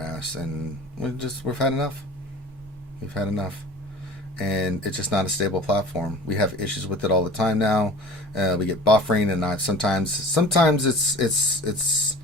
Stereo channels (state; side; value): normal; both; correlation 0.41